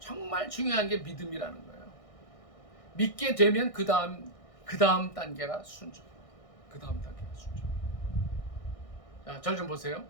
중요한 게 믿음이라는 거예요. 믿게 되면 그 다음 단계가 순종. 그 다음 단계가 순종. 자, 절 좀 보세요.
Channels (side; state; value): right; late; 1.6 ms